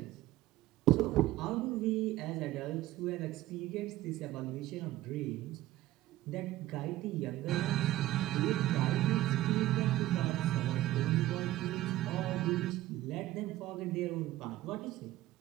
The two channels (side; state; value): left; quieter; 15.7 dB